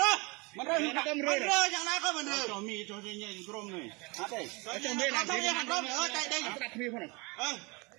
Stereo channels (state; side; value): quieter; left; 27.6 dB